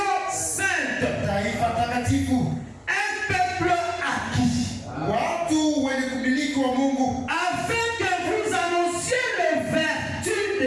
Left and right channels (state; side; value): identical; both; correlation 1.00